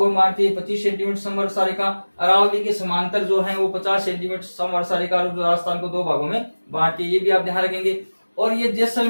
में बांटती है 25 सेंटीमीटर समवर्षा रेखा, अरावली के समांतर जो है वो 50 सेंटीमीटर समवर्षा रेखा जो राजस्थान को दो भागों में बांटती है, ये भी आप ध्यान रखेंगे। और ये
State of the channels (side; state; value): both; inverted; correlation -1.00